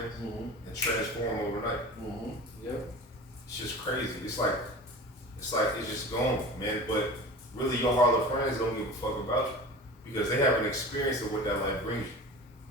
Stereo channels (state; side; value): normal; both; correlation 0.35